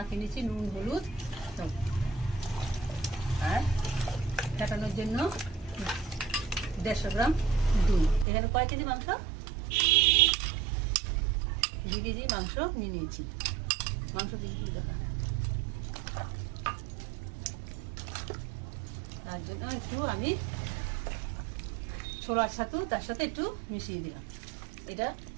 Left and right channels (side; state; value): left; drops out; at 8.2 s